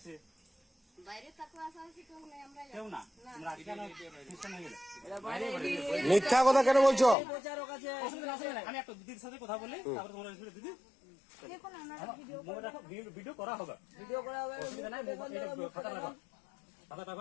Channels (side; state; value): right; drops out; at 7.2 s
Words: মিথ্যা কথা কেন বলছো? আমি একটা দিদির সাথে কথা বলি, তারপরে তোমার দিদি ভিডিও করা হবে,